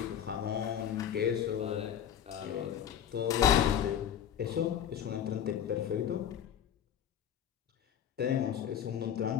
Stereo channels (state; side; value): quieter; right; 9.5 dB